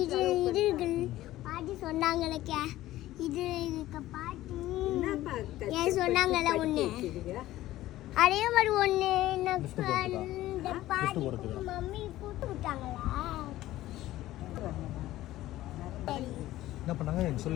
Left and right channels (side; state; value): right; quieter; 15.4 dB